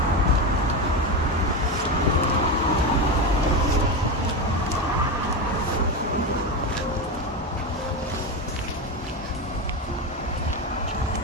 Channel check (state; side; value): normal; both; correlation 0.17